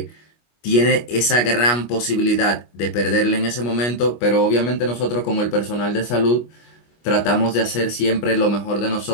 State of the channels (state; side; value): late; right; 25 ms